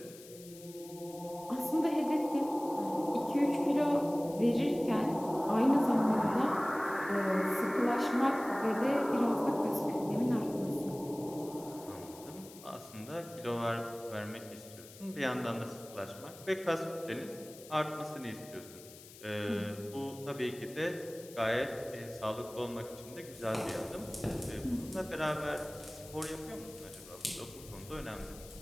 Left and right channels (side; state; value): left; noise; hiss, 18 dB below the sound